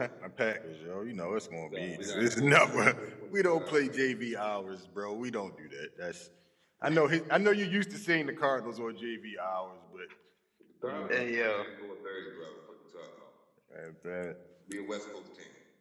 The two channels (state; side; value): identical; both; correlation 1.00